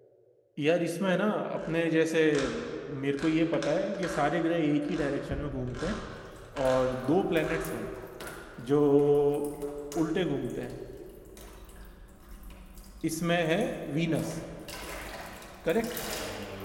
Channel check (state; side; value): identical; both; correlation 1.00